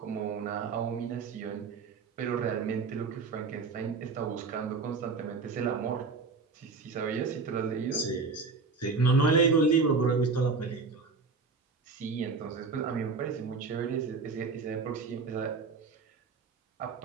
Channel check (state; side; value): quieter; left; 4.5 dB